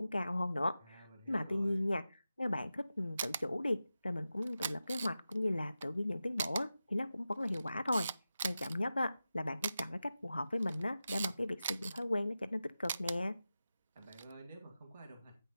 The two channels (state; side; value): inverted; both; correlation -0.93